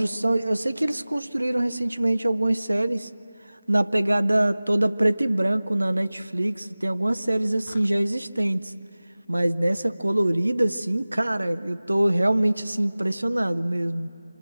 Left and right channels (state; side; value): inverted; both; correlation -0.98